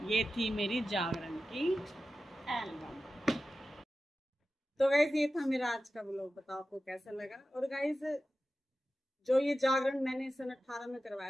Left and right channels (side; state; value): both; normal; correlation 0.93